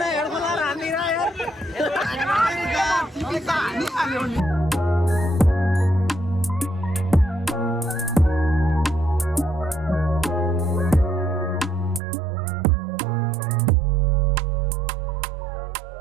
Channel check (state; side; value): drops out; left; at 12.0 s